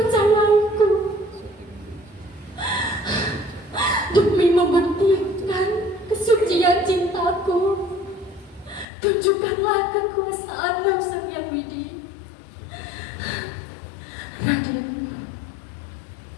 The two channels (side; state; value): right; drops out; at 8.8 s